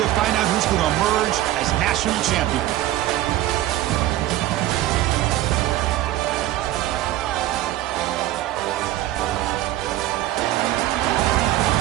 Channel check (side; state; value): left; quieter; 14.7 dB